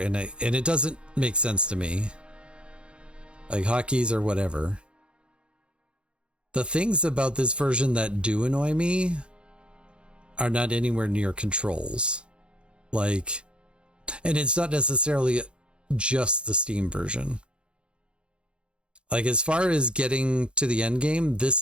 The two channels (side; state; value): left; late; 0.056 ms